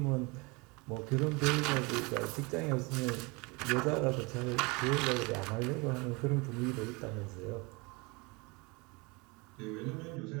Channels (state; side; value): quieter; left; 27.1 dB